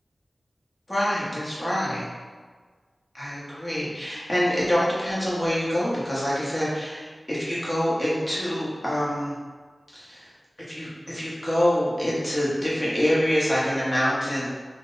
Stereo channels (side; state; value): both; normal; correlation 0.97